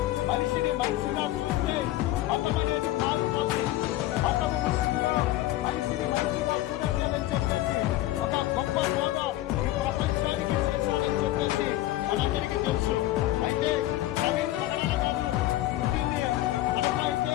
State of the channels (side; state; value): right; quieter; 15.5 dB